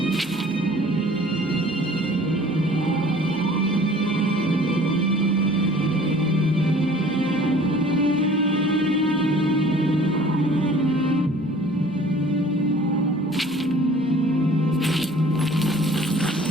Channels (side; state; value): both; normal; correlation 0.50